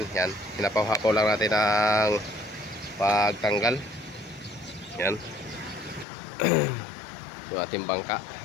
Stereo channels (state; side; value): drops out; right; at 6.1 s